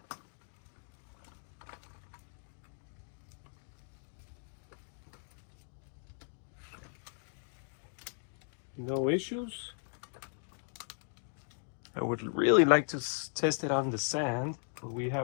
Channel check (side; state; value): right; silent; 53 dB below the other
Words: No issues. I would really like to test it on the sand, but we